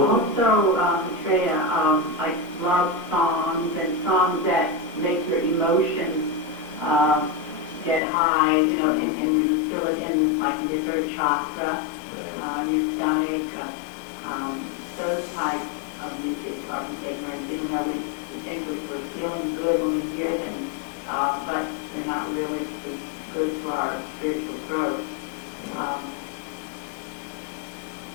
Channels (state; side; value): drops out; right; at 8.0 s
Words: Also, Maitreya, like love songs and songs that make your emotions get high, and you feel it in like your third chakra, your stomach. Those types of music are ignorant, even though we think we're feeling good when we hear them, but they're not really good for our spiritual growth.